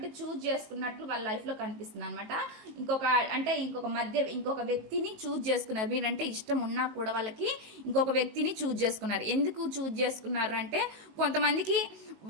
చూజ్ చేసుకున్నట్లు వాళ్ళ లైఫ్‌లో కనిపిస్తుందనమాట. ఇంకొక ఇంకొక వ్యక్తిని చూజ్ చేసుకున్నారు. మీరంటే ఇష్టం ఉన్నా కూడా వాళ్ళకి ఇంకొక వ్యక్తిని చూజ్ చేసుకున్నారు. ఎందుకు చూజ్ చేసుకున్నారు అంటే కొంతమందికి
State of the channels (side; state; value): left; late; 19 ms